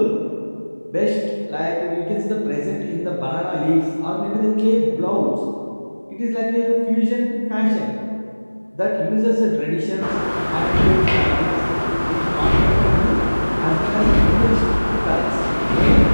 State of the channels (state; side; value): inverted; both; correlation -1.00